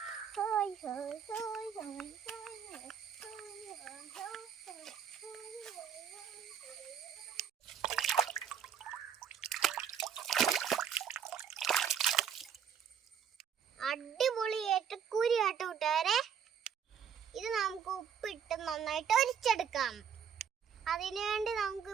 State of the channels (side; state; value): left; quieter; 8.0 dB